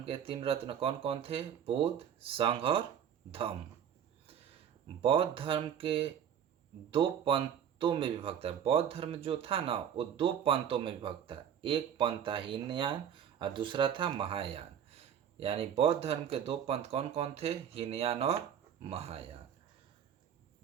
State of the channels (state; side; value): quieter; left; 8.9 dB